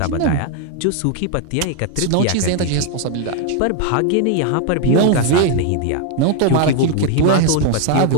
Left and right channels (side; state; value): both; different; correlation 0.01